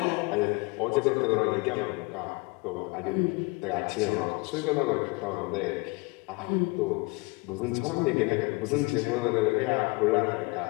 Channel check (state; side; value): quieter; right; 26.7 dB